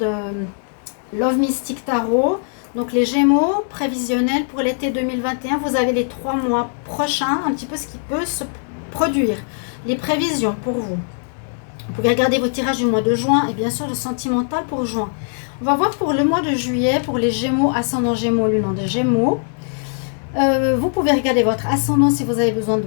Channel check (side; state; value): right; silent; 66 dB below the other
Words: Love Mystic Tarot. Donc, les Gémeaux prévisionnels pour l'été 2021, vous avez les 3 mois prochains, un petit peu ce qui peut se produire. Les prévisions pour vous. Vous pouvez regarder vos tirages du mois de juin et bien sûr le sentimental pour juin. On va voir pour le mois de juillet, pour les Gémeaux, ascendant Gémeaux, lune des Gémeaux. Vous pouvez regarder votre ascendant si vous avez besoin de